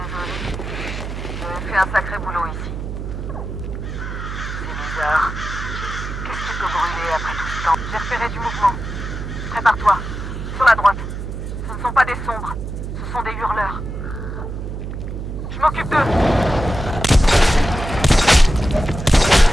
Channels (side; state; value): right; noise; hum, 6 dB below the sound